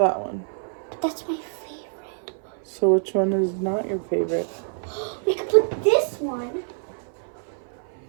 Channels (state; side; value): silent; left; 56 dB below the other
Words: one. But that's my favorite. So which one is not your favorite? We could put this one.